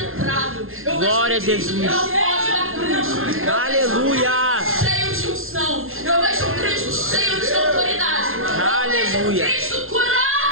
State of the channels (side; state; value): left; late; 0.61 ms